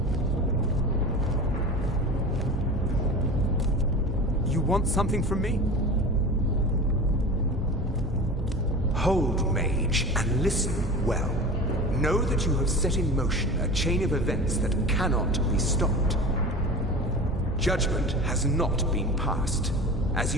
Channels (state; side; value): normal; both; correlation 0.32